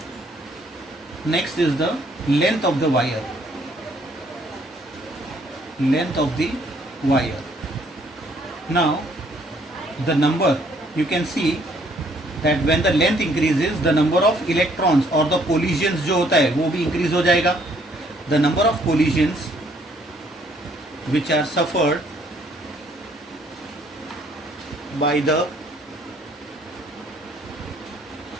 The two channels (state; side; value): normal; both; correlation 0.65